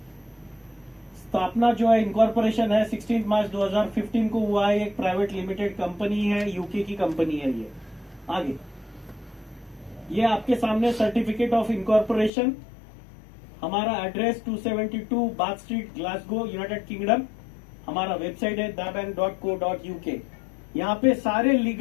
स्थापना जो है, इनकॉर्पोरेशन है, 16 मार्च 2015 को हुआ है। एक प्राइवेट लिमिटेड कंपनी है, यूके की कंपनी है ये। आगे ये आपके सामने सर्टिफिकेट ऑफ इनकॉर्पोरेशन, हमारा address 272 bath street, Glasgow, United kingdom. हमारा वेबसाइट है dabank.co.uk। यहाँ पे सारे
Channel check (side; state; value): right; drops out; at 12.3 s